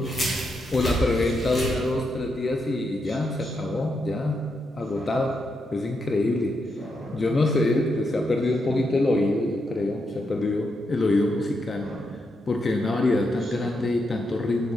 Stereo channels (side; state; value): both; normal; correlation 0.82